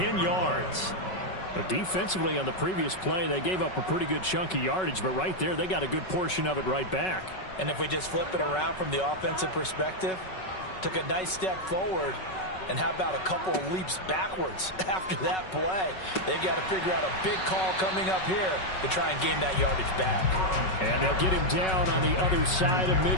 yards. But defensively on the previous play, they gave up a pretty good chunk of yardage, but right there, they got a good portion of it right back. And if we just flip it around from the offensive perspective, took a nice step forward, and how about a couple of leaps backwards after that play? They've got to figure out a big call coming up here to try and gain that yardage back. And they'll get him down on the other side of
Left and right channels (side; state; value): right; late; 5.3 ms